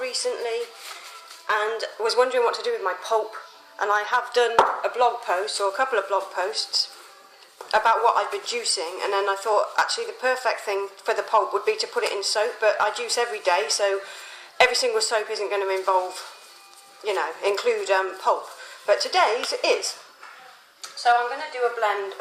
recently and was wondering what to do with my pulp. And I have done a blog post, or a couple of blog posts, about what I've been juicing, and then I thought actually the perfect thing for the pulp would be to put it in soap, but I juice every day, so every single soap isn't going to involve, include pulp. But today's is. So I'm going to do a blend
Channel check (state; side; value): identical; both; correlation 1.00